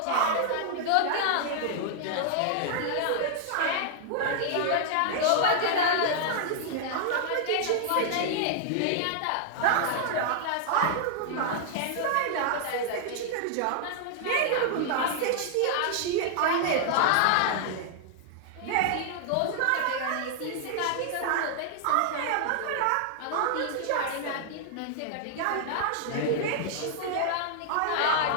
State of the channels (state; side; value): different; both; correlation -0.01